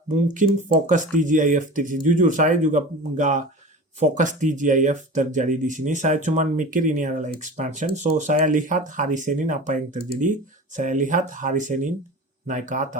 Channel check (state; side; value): normal; both; correlation 0.34